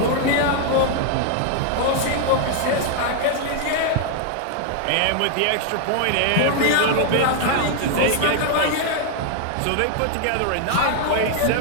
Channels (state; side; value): different; both; correlation 0.00